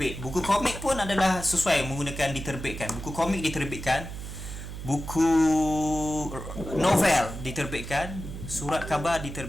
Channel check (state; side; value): noise; right; hum, 9 dB below the sound